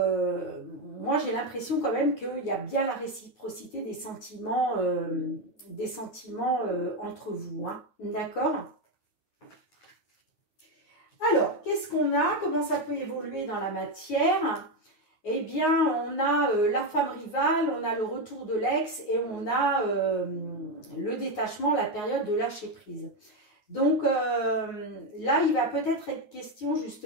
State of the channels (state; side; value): late; right; 9.5 ms